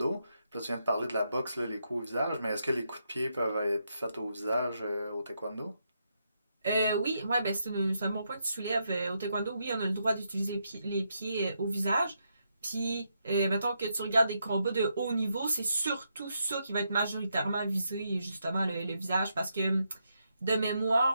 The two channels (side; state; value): both; inverted; correlation -0.81